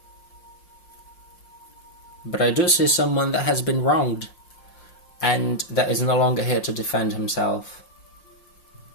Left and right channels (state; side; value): late; right; 5.6 ms